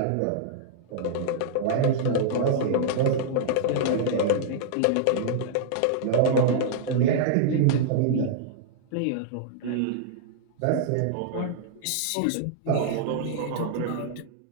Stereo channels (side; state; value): both; different; correlation -0.01